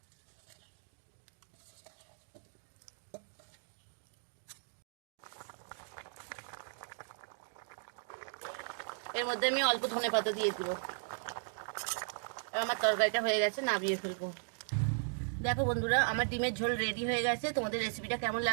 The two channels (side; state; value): left; silent; digital silence